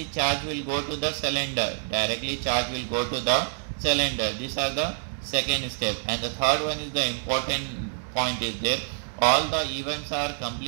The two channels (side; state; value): left; silent; digital silence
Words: charge will go to the cylinder. Directly charge will go to the cylinder. These are the second step. And the third one is the important point is there. All the events are